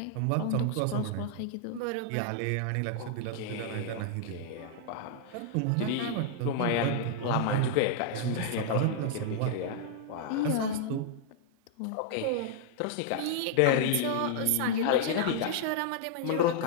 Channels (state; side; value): different; both; correlation -0.01